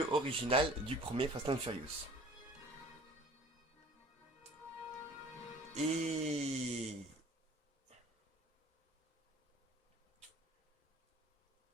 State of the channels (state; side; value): normal; both; correlation 0.48